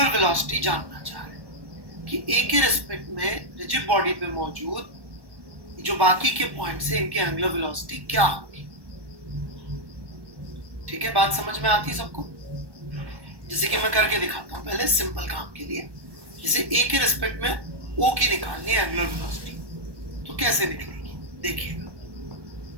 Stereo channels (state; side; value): late; left; 1.2 ms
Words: वेलोसिटी जानना चाह रहे हैं कि ए के रिस्पेक्ट में रिजिड बॉडी पे मौजूद जो बाकी के पॉइंट्स है इनकी एंगुलर वेलोसिटी क्या होगी। ठीक है, बात समझ में आती है सबको? जैसे कि मैं करके दिखाता हूँ पहले सिंपल काम के लिए। जैसे ए के रिस्पेक्ट में ओ की निकालनी है एंगुलर वेलोसिटी, तो कैसे निकलेगी देखिएगा।